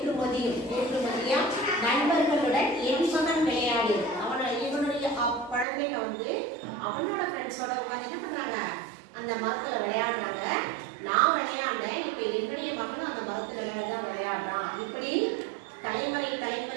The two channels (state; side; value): drops out; left; at 5.7 s